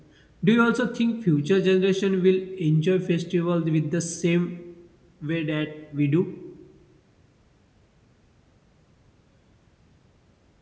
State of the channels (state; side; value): identical; both; correlation 1.00